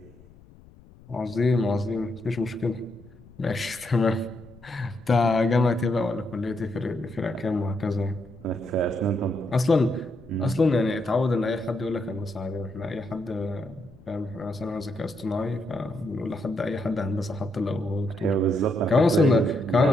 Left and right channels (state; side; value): noise; left; rumble, 23 dB below the sound